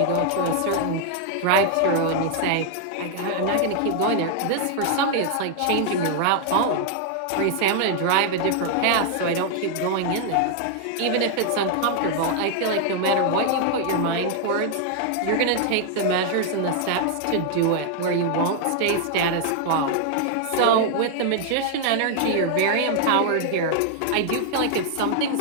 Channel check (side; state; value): both; different; correlation 0.00